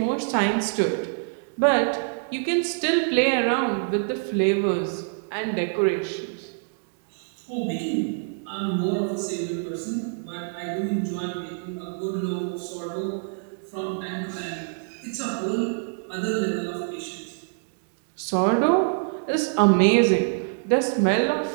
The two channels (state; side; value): silent; left; digital silence